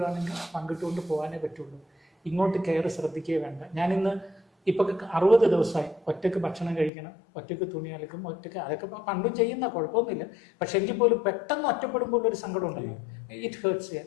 പങ്കിട്ടുകൊണ്ട് പോകാനേ പറ്റുള്ളൂ. ഇങ്ങോട്ട് കെയർ ശ്രദ്ധിക്കുകയേ വേണ്ട. ഞാനിന്ന് ഇപ്പം 60 ദിവസമായി ഒറ്റയ്ക്ക് ഭക്ഷണം കഴിക്കണം, ഒറ്റയ്ക്ക് തുണി അലക്കും, ഒറ്റയ്ക്ക്, അതൊക്കെ പണ്ടും ചെയ്യുന്ന കുഴപ്പമൊന്നുമില്ല. പക്ഷെ എങ്കിൽ പോലും പെട്ടെന്ന് ഒറ്റപ്പെടുമ്പോൾ ഒരു സങ്കടം ഉണ്ടല്ലോ. ഇറ്റ്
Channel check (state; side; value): drops out; right; at 6.9 s